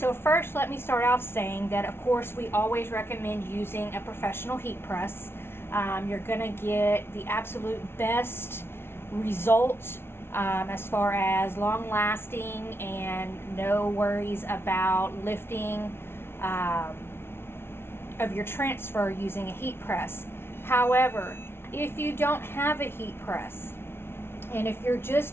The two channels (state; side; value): late; right; 0.12 ms